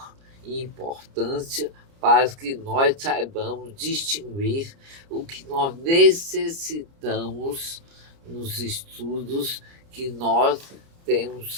e importância para que nós saibamos distinguir o que nós necessitamos nos estudos que nós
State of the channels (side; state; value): left; late; 30 ms